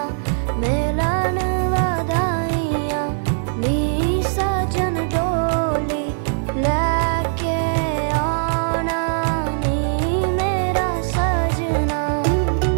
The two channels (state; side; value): silent; left; digital silence